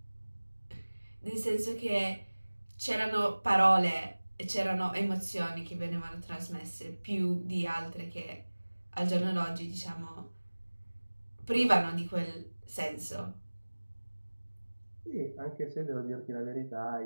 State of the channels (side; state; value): both; inverted; correlation -1.00